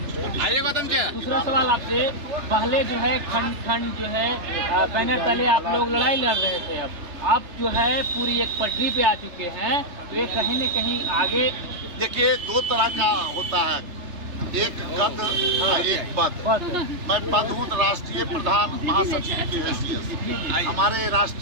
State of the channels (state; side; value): late; left; 3.3 ms